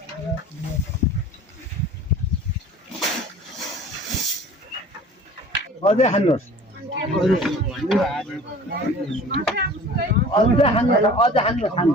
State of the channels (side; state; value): both; normal; correlation 0.44